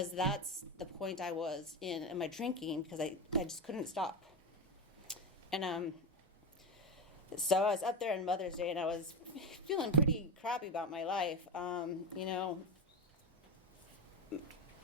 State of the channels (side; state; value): both; normal; correlation 0.17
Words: that's the point I was in my drinking, because I just couldn't stop. And so I was up there on Mother's Day, and I was feeling pretty crappy about my life.